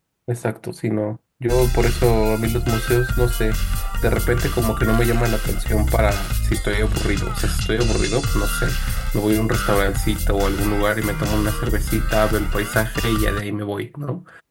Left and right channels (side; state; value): both; identical; correlation 1.00